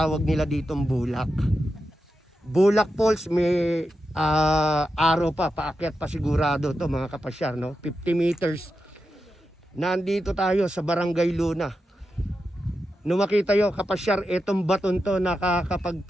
nila ditong bulak. Bulak Falls, may araw pa, paakyat pa sigurado to mga kapasyar, no? 50 meters. Nandito tayo sa Barangay Luna. Nung makita yo kapasyar, itong baton to,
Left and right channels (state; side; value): normal; both; correlation 0.89